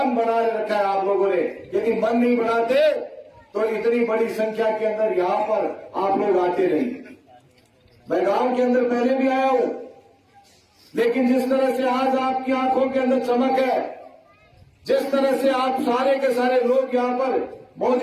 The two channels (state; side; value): identical; both; correlation 1.00